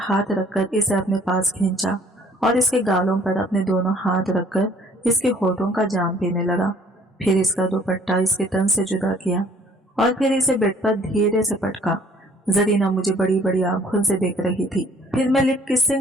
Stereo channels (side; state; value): both; normal; correlation 0.57